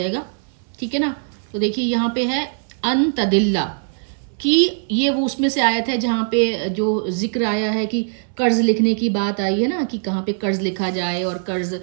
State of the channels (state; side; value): silent; left; 60 dB below the other